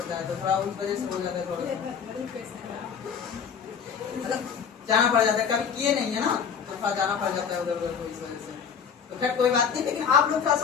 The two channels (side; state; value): right; quieter; 6.9 dB